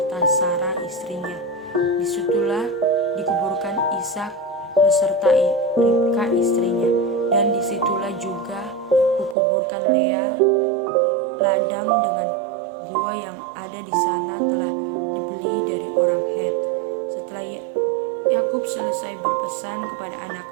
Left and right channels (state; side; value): drops out; left; at 9.3 s